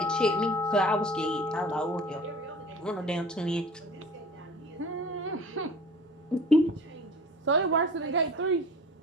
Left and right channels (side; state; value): both; normal; correlation 0.43